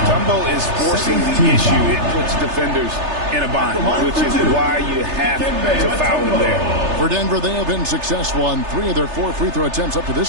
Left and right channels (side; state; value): left; late; 3.3 ms